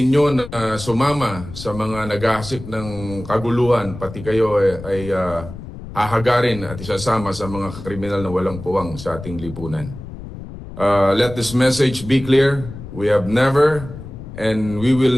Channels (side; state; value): left; noise; rumble, 12 dB below the sound